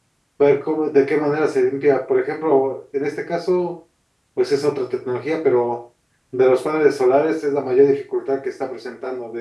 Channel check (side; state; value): both; identical; correlation 1.00